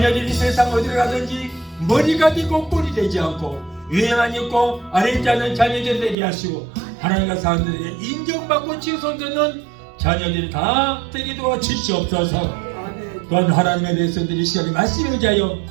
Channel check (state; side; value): drops out; left; at 6.2 s